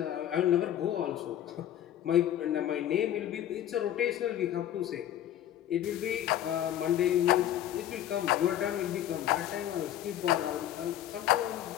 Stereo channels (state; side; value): quieter; right; 11.6 dB